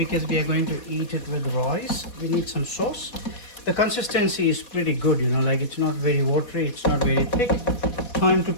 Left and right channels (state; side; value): late; right; 4.2 ms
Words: we are going to eat it with rice. We need some sauce. The consistency is pretty good, you know, like it's not very watery, it's not very thick. Time to